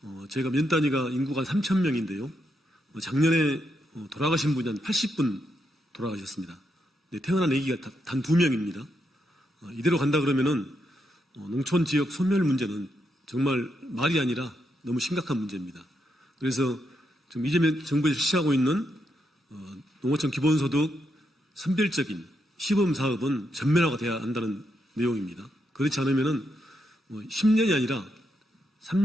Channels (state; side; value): normal; both; correlation 0.81